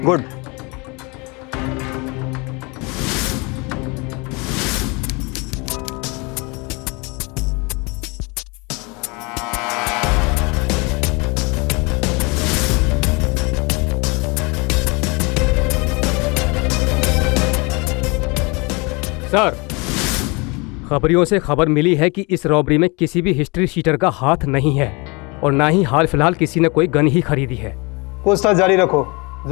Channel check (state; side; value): quieter; right; 28.4 dB